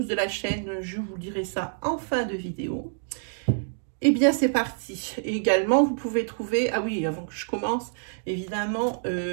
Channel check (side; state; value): left; silent; digital silence